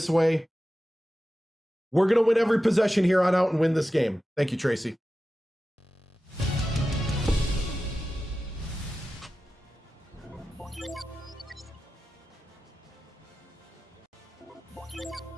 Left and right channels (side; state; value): both; normal; correlation 0.93